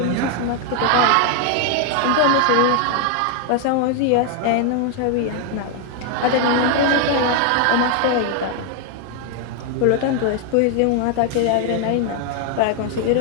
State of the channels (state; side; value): different; both; correlation 0.00